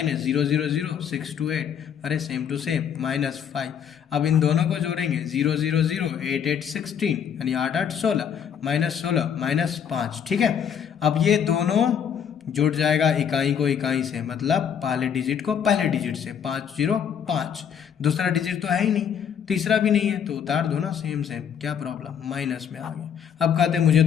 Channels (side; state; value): right; quieter; 8.1 dB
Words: 0 0 6 2 8, अरे सेम टू सेम, -5। अब इन दोनों को जोड़ेंगे, 0 0 0 8 8 16, यानी 8 8 16, -16 -5। ठीक है, अब ये दोनों जुड़ जाएगा इकाई को इकाई से, मतलब पहले डिजिट को पहले डिजिट से, 5 0 5, दूसरा डिजिट तो है ही नहीं, तीसरा भी नहीं है, तो उतार दो ना, सेम क्या प्रॉब्लम, माइनस में आ गया। अब कहते मुझे